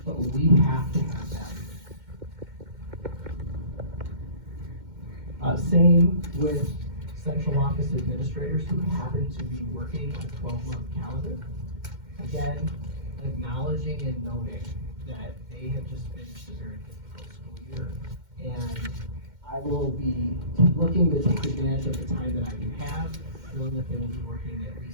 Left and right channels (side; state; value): left; late; 2.1 ms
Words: but we have to have value. Same with central office administrators who happen to be working a 12-month calendar. Again, acknowledging and noting that they have just finished a very difficult school year, and I will be looking to take advantage of the time that I do have, knowing that they will be working at